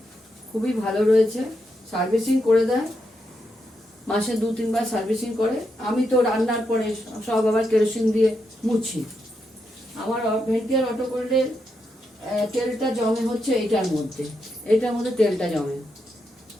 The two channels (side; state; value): both; normal; correlation 0.83